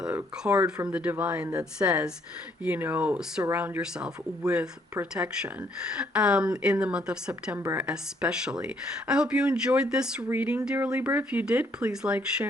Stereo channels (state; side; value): normal; both; correlation 0.67